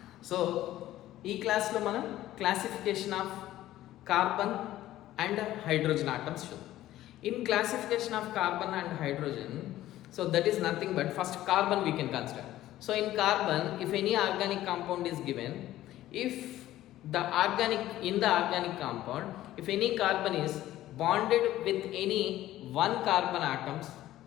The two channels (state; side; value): quieter; right; 14.4 dB